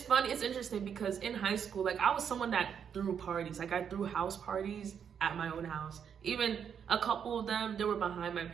funny, it's interesting, because in high school, like, I was someone that threw parties. Like, I threw house parties at my own house. Even a couple of them, they were behind my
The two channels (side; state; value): left; quieter; 7.7 dB